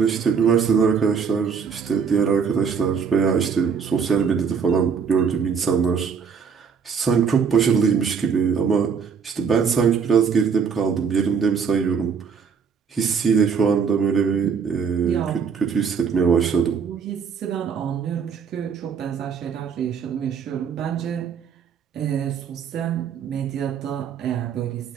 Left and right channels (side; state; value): left; quieter; 6.3 dB